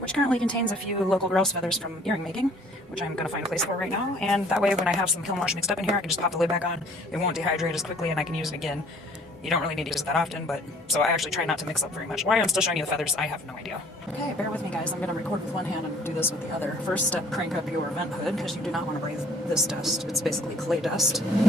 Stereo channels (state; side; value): normal; both; correlation 0.56